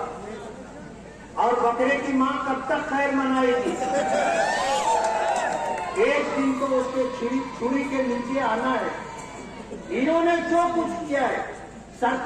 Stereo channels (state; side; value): identical; both; correlation 1.00